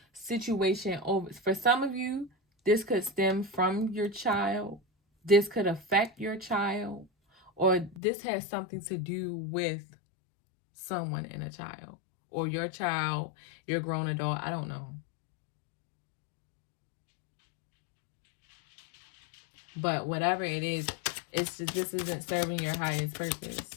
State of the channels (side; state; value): right; drops out; at 8.0 s